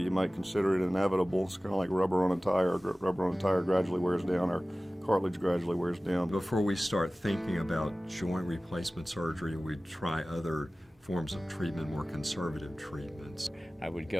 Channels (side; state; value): both; normal; correlation 0.97